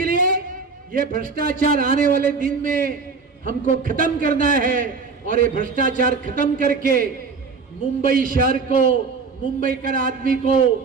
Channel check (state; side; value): quieter; left; 4.8 dB